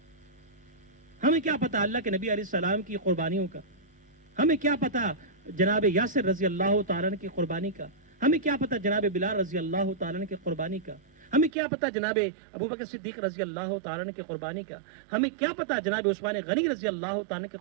ہمیں کیا پتہ اللہ کے نبی علیہ السلام کی قربانیوں کا؟ ہمیں کیا پتہ جناب یاسر رضی اللہ تعالیٰ عنہ کی قربانی کا؟ ہمیں کیا پتہ جناب بلال رضی اللہ تعالیٰ عنہ کی قربانی کا؟ ہمیں کیا پتہ جناب ابوبکر صدیق رضی اللہ تعالیٰ عنہ کی قربانی کا؟ ہمیں کیا پتہ جناب عثمان غنی رضی اللہ تعالیٰ عنہ کی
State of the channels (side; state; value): left; drops out; at 11.5 s